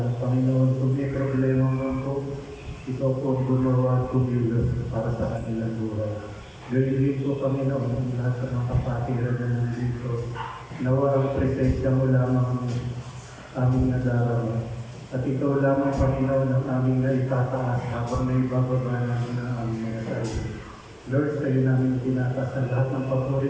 Panginoon, kung may problema man po, ikaw po gumawa at kumilos para sa kanilang buhay. Gawin din po, Panginoon, ang lahat ng mga kapatiran na nandito. Nawa ang presensya mo lamang aming nadarama. At ikaw lamang, Panginoon, ang aming naitataas habang naibababa namin ang aming mga sarili. Lord, sa iyo namin tinataas ang lahat ng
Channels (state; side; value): identical; both; correlation 1.00